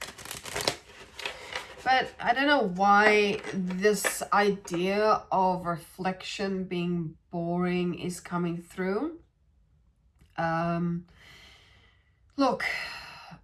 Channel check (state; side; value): identical; both; correlation 1.00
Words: But I don't know why this idea of reflection being boring is coming through. Look,